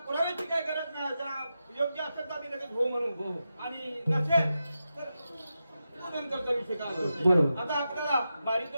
पुराव्याची काही गरज नाही. जर योग्य असेल तर आम्ही लगेच हो म्हणू हो. आणि नसेल तर नंतरचा विषय काय असतो. बरोबर. आता आपल्याला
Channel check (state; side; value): inverted; both; correlation -0.89